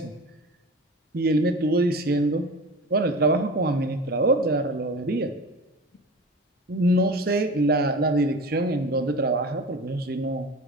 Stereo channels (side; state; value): both; normal; correlation 0.34